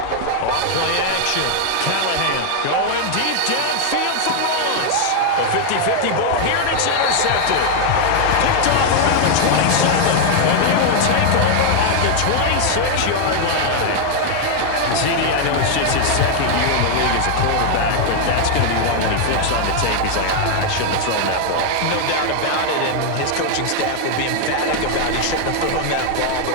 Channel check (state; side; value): different; both; correlation 0.00